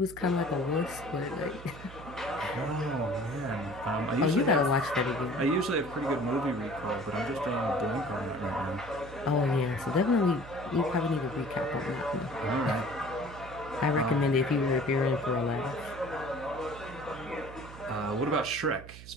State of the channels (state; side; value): noise; right; hum, 15 dB below the sound